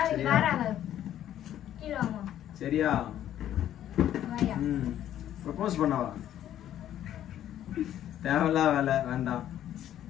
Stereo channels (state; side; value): quieter; right; 11.5 dB